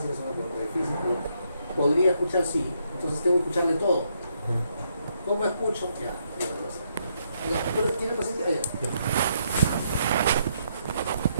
es una pregunta difícil. Podría escuchar sí, entonces tengo que escucharle todo. ¿Cómo escucho? Ya, ¿tiene paciente? Allá.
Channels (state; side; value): inverted; both; correlation -0.76